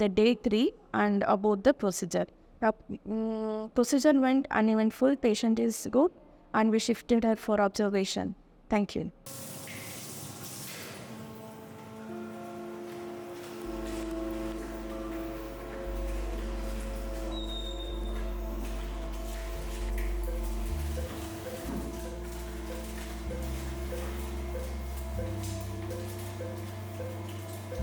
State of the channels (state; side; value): identical; both; correlation 1.00